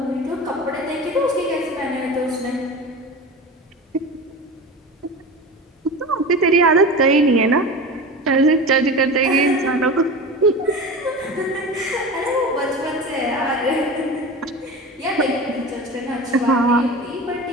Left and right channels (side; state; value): both; normal; correlation 0.31